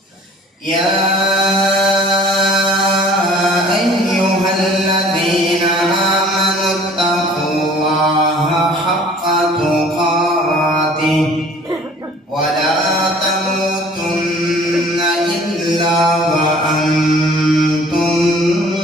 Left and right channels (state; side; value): normal; both; correlation 0.51